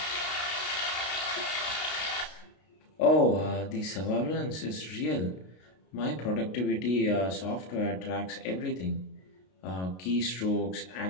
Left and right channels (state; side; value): late; right; 32 ms